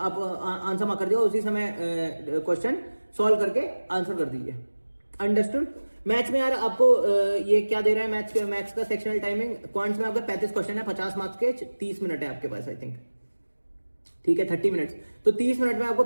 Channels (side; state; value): both; inverted; correlation -1.00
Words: आंसर मार्क कर दिए, उसी समय क्वेश्चन सॉल्व करके आंसर कर दीजिए। अंडरस्टूड? मैथ्स में यार आपको ये क्या दे रहा है, मैथ्स का सेक्शनल टाइमिंग, क्वांट्स में आपका 35 क्वेश्चन है, 50 मार्क्स के, 30 मिनट है आपके पास आई थिंक, ठीक है, 30 मिनट्स। तो 30 मिनट में आपको